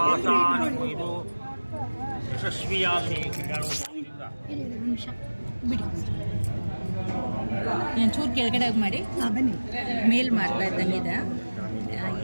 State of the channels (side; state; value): both; inverted; correlation -1.00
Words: ನಿಮ್ಮ ಇದು ಯಶಸ್ವಿಯಾಗಲಿ. ನಿಮಿಷ ಬಿಡಿ, ಒಂಚೂರು ಕೆಳಗಡೆ ಮಾಡಿ. ಬನ್ನಿ. ಮೇಲ್ ಮಾಡ್ತಾ ಇದ್ದಂಗಿದೆ.